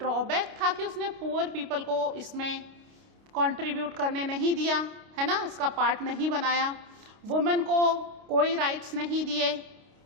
था कि उसने पुअर पीपल को इसमें कंट्रीब्यूट करने नहीं दिया, है ना, इसका पार्ट नहीं बनाया। वुमेन को कोई राइट्स नहीं दिए,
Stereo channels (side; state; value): left; late; 29 ms